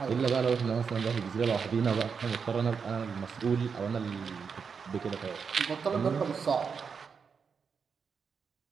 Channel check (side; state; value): left; quieter; 6.0 dB